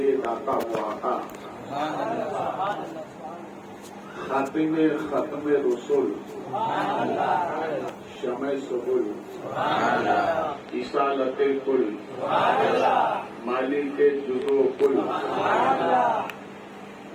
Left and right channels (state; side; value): identical; both; correlation 1.00